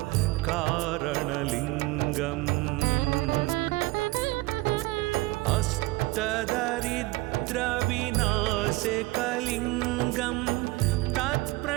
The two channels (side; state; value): left; quieter; 21.1 dB